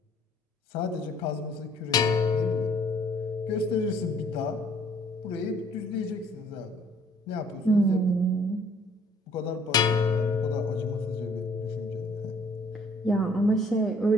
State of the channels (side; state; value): both; normal; correlation 0.59